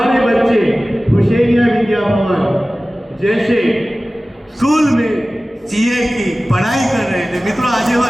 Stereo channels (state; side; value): normal; both; correlation 0.97